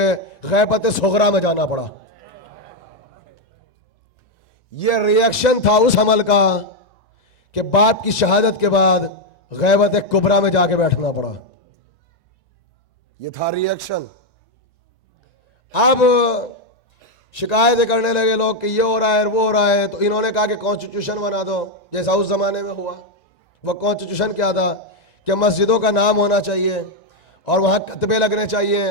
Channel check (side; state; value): right; late; 1.9 ms